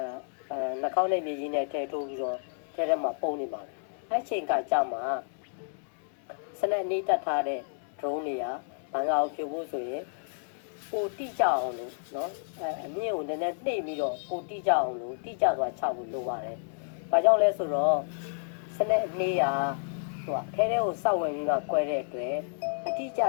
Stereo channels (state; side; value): silent; right; digital silence